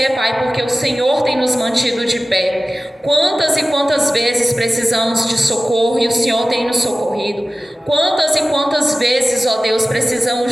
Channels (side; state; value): both; normal; correlation 0.96